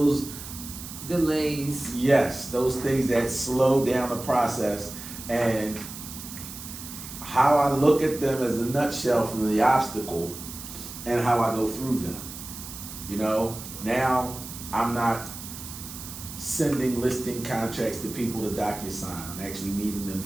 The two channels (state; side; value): noise; right; hiss, 11 dB below the sound